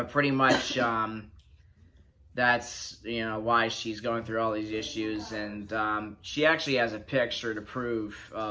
pretty much that's why she's going through all these issues, and she actually has a picture to prove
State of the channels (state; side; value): identical; both; correlation 1.00